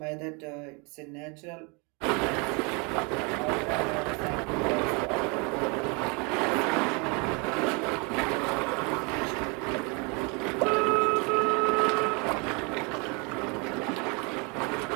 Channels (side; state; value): left; quieter; 31.5 dB